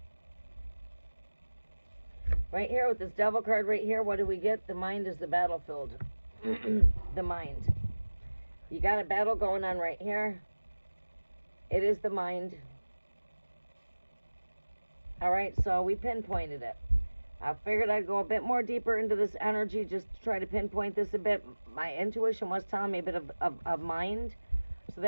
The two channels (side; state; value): both; inverted; correlation -1.00